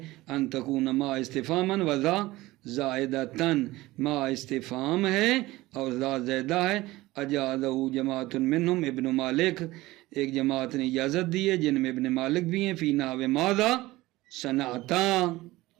ان تکون ما استفہاماً وذا زائدتاً، ما استفہام ہے اور ذا زائدہ ہے، اجازہ جماعت منہم ابن مالک، ایک جماعت نے اجازت دی ہے جن میں ابن مالک بھی ہیں، فی نحو ماذا صنعتا،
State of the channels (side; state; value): left; quieter; 18.6 dB